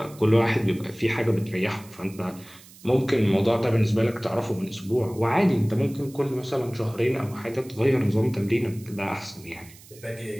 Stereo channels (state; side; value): noise; right; hiss, 22 dB below the sound